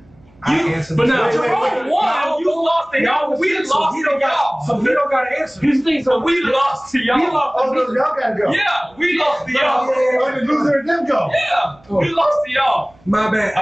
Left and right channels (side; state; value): right; noise; hum, 30 dB below the sound